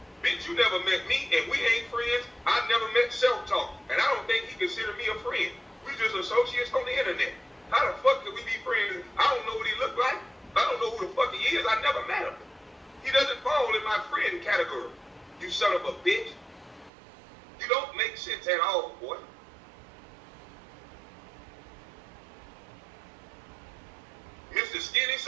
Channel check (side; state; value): left; drops out; at 16.9 s